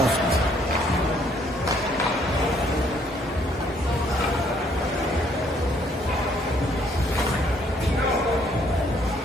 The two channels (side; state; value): both; normal; correlation 0.66